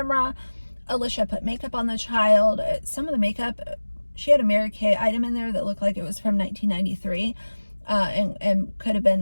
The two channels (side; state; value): both; inverted; correlation -1.00